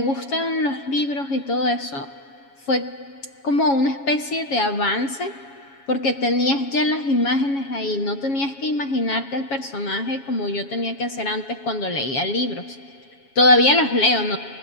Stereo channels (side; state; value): right; late; 7.2 ms